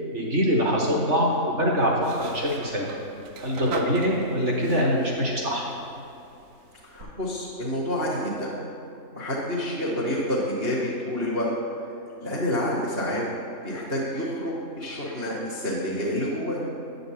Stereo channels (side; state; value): left; late; 3.4 ms